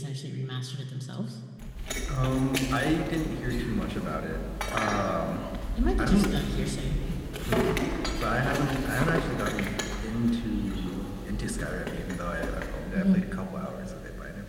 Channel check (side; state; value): both; identical; correlation 1.00